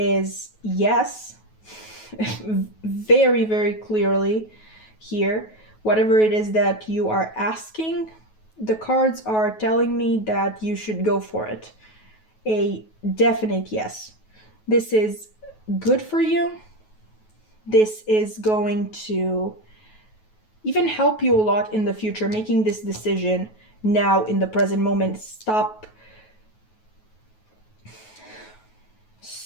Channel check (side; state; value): right; late; 9.3 ms